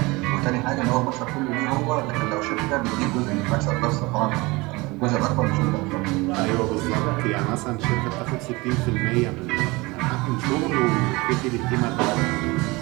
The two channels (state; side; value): quieter; left; 23.5 dB